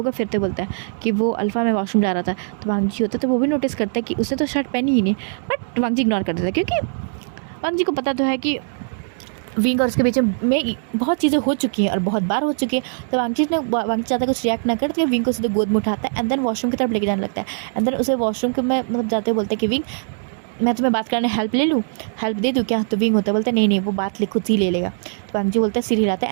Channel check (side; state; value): left; silent; digital silence